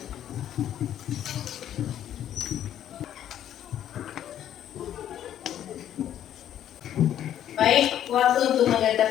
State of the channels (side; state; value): right; quieter; 10.9 dB